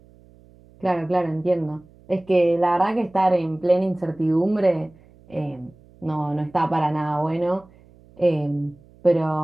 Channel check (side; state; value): right; noise; hum, 27 dB below the sound